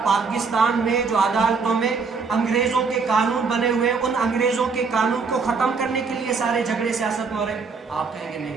پاکستان میں جو عدالتوں میں انگریزوں کے قانون بنے ہوئے ہیں، ان انگریزوں کے قانون کو ختم کرنے کے لیے سارے جھگڑے سیاست میں ہو رہے ہیں؟ آپ کہیں گے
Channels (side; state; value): left; quieter; 4.9 dB